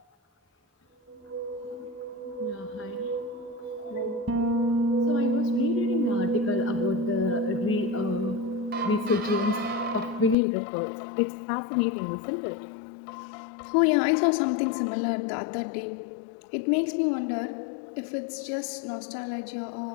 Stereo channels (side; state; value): right; drops out; at 10.4 s